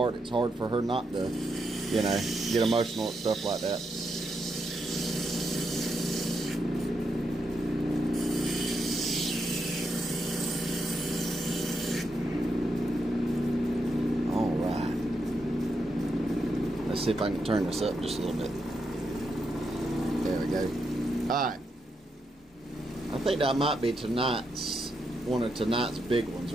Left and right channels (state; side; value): normal; both; correlation 0.82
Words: it's hard for her not to, you know, get emotional at stuff like that. Alright. Let's see if I can turn this up just a little bit. There we go. Alright. I think that might be one of tonight's big ones